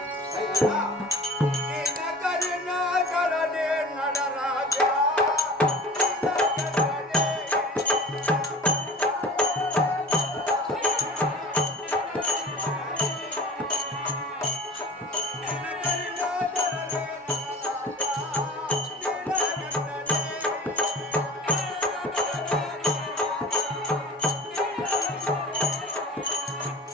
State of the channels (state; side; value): normal; both; correlation 0.40